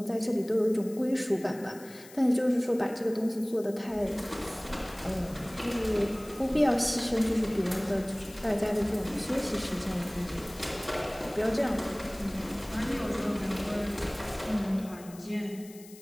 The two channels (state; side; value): noise; left; hiss, 20 dB below the sound